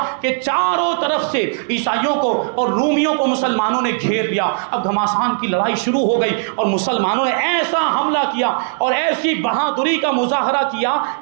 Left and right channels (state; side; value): silent; left; digital silence